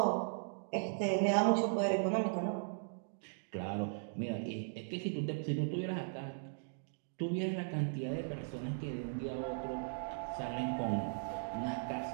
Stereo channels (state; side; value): silent; left; digital silence